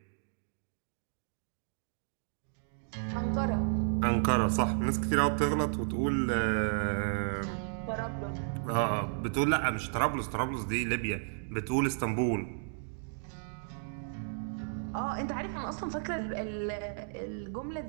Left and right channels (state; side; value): silent; left; digital silence